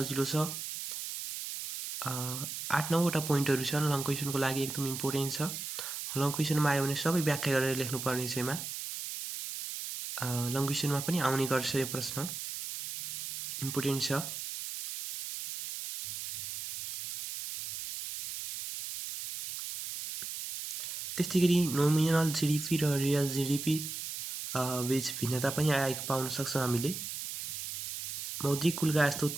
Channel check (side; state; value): right; noise; hiss, 6 dB below the sound